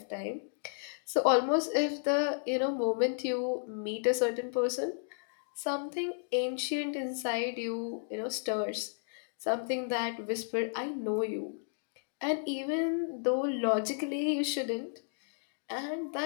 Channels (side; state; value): right; silent; digital silence